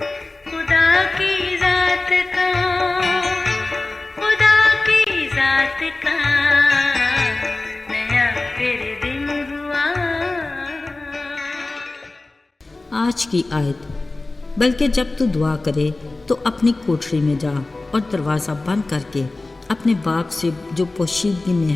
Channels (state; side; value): quieter; right; 3.2 dB